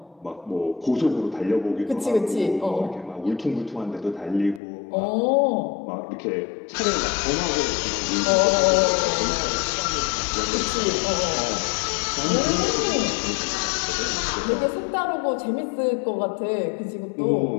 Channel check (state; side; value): drops out; right; at 4.6 s